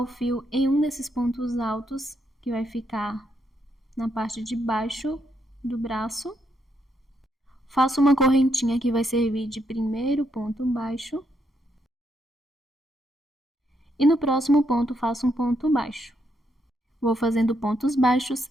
fio em um desses pontos altos, que vai ficar na parte de baixo do braço. Faço uma correntinha que vai servir de primeiro ponto baixo. E no próximo ponto faço um ponto baixo. Vou fazendo pontos baixos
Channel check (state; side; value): normal; both; correlation 0.77